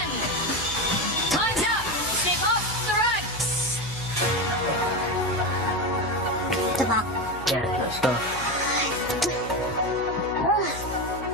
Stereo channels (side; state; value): left; noise; hum, 14 dB below the sound